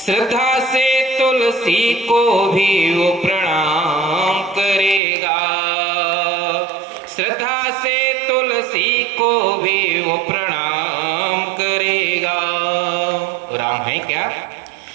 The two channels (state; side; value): drops out; left; at 5.0 s